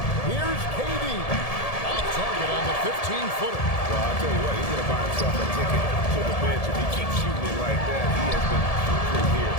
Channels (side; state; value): right; late; 1.7 ms